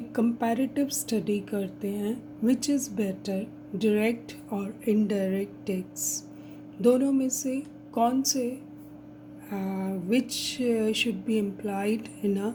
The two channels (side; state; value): both; identical; correlation 1.00